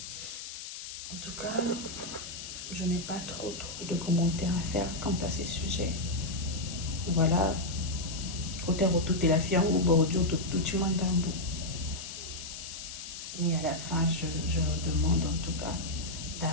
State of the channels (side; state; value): left; noise; hiss, 9 dB below the sound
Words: En tout cas, je n'ai pas trop de commentaires à faire quant à ces sujets. Voilà, Côté retour, la fille en haut, tout tu m'entends. Mais à la fin, je me demande en tout cas